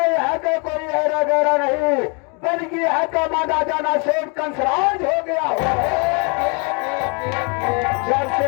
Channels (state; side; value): quieter; right; 33.8 dB